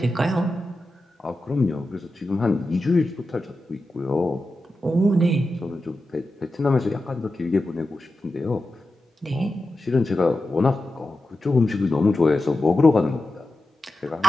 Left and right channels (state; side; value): normal; both; correlation 0.92